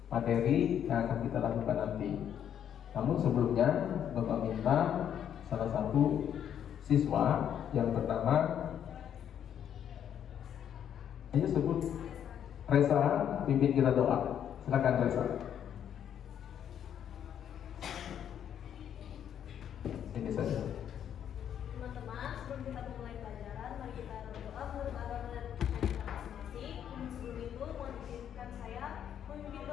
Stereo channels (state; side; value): quieter; right; 9.4 dB